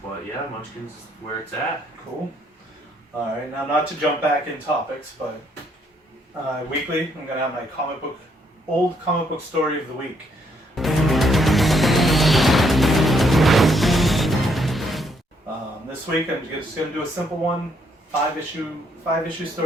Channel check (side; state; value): both; normal; correlation 0.72